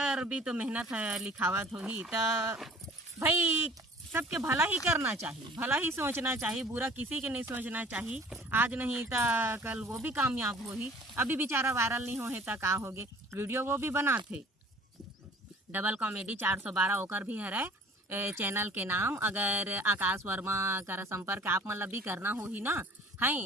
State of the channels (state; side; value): normal; both; correlation 0.49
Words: भी तो मेहनत है लिखावत हो ही। तो भाई सबके भला ही करना चाहिए, भला ही सोचना चाहिए, बुरा किसी के नहीं सोचना चाहिए। आज नहीं तो कल वो भी कामयाब हो ही। अभी बेचारा वायरल नहीं हो है तो का होगे, वीडियो वो भी बनाते डबल कॉमेडी 412 ओकर भी है चैनल के नाम। अगर आकाश वर्मा का संपर्क आप मतलब भी करना हो ही ना